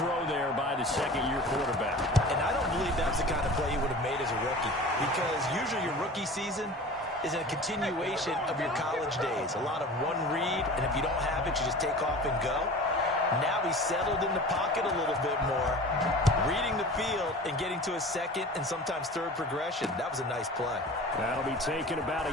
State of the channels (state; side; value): normal; both; correlation 0.38